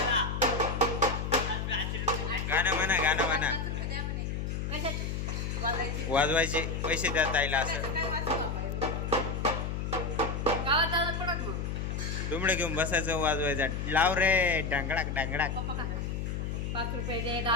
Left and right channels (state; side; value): noise; left; hum, 3 dB below the sound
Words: गाणं म्हणा. वाजवायचे पैसे द्या ताईला. असं दुमडं घेऊन बसायचं, वाजवायचं. लाव रे ढंगडाक ढंगडाक. 5 रुपये दे,